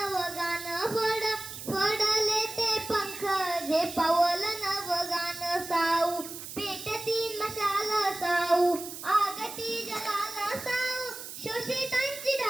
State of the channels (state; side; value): noise; right; hiss, 10 dB below the sound